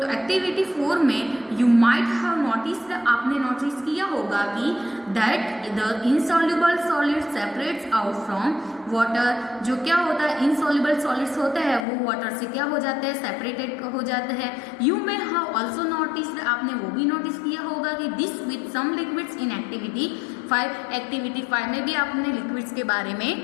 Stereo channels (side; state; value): right; drops out; at 11.9 s